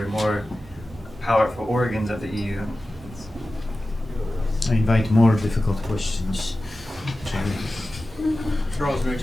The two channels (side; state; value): both; normal; correlation 0.95